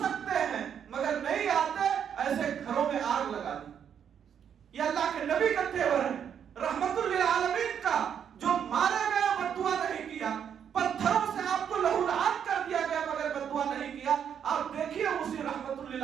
ہیں مگر نہیں آتے، ایسے گھروں میں آگ لگا دی۔ یہ اللہ کے نبی کا تیور ہے، رحمت للعالمین کا، جو مارے گئے بد دعا نہیں کیا، پتھروں سے آپ کو لہولہان کر دیا گیا مگر بد دعا نہیں کیا۔ آپ دیکھیے اسی رحمت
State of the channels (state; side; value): quieter; left; 8.3 dB